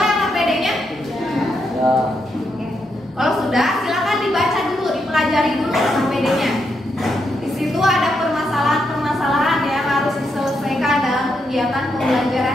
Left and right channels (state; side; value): normal; both; correlation 0.81